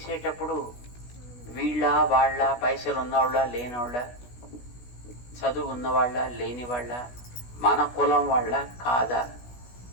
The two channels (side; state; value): right; late; 16 ms